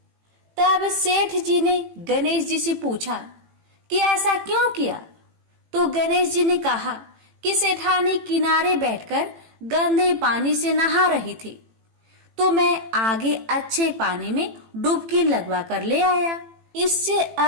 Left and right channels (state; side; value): late; left; 18 ms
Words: तब सेठ जी ने गणेश जी से पूछा कि ऐसा क्यों किया? तो गणेश जी ने कहा कि सेठानी किनारे बैठकर गंदे पानी से नहा रही थी तो मैं आगे अच्छे पानी में डुबकी लगवा कर ले आया। इससे